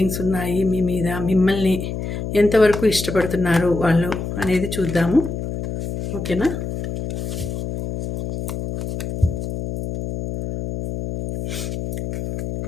ఉన్నాయి మీ మీద? మిమ్మల్ని ఎంతవరకు ఇష్టపడుతున్నారు వాళ్ళు అనేది చూద్దాము. ఓకేనా?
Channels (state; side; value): noise; left; hum, 5 dB below the sound